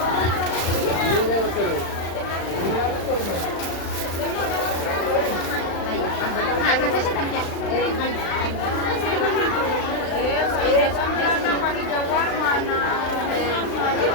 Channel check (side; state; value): right; late; 35 ms